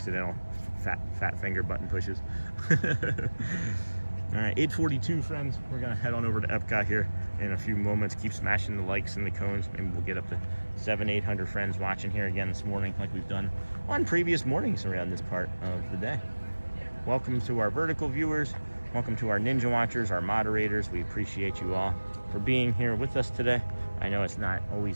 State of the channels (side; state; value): both; inverted; correlation -1.00